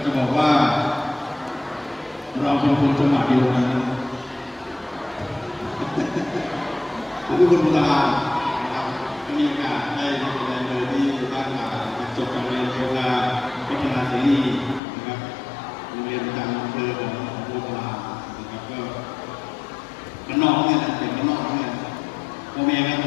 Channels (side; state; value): right; drops out; at 14.8 s